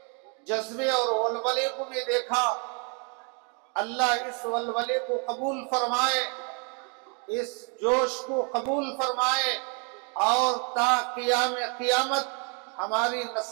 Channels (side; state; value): left; quieter; 36.7 dB